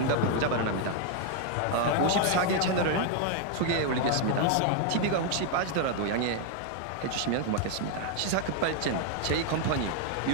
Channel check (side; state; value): both; different; correlation 0.01